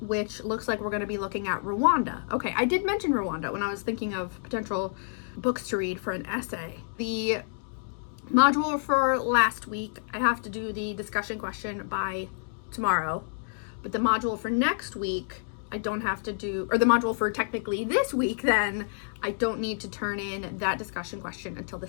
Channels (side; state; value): right; silent; digital silence